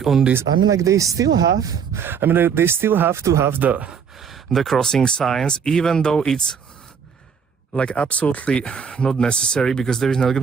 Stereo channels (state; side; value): quieter; left; 6.8 dB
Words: on this. I mean, like, they still have to have the crossing signs, even though it's like absolutely not necessary, because there is not